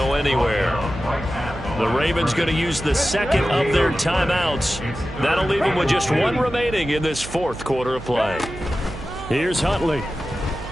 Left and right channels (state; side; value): noise; right; hum, 13 dB below the sound